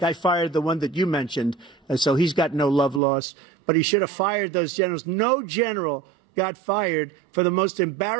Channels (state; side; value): drops out; left; at 3.0 s